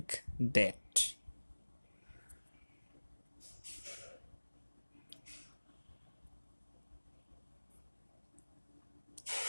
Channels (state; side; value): inverted; both; correlation -1.00